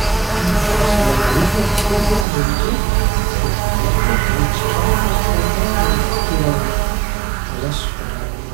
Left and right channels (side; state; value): left; drops out; at 2.2 s